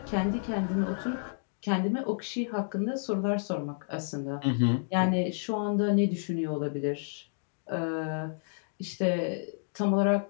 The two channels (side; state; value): right; silent; digital silence